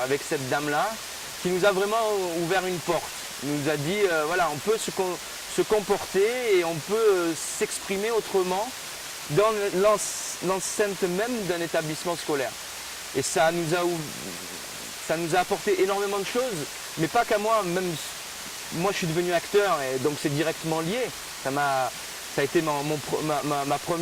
avec cette dame-là, qui nous a vraiment ouvert une porte. Nous a dit, voilà, on peut se comporter et on peut s'exprimer autrement dans l'enceinte même d'un établissement scolaire. Et ça nous a apporté énormément de choses, mais pas qu'à moi, même moi je suis devenu acteur et donc c'est directement lié. Ça a été ma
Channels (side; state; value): both; identical; correlation 1.00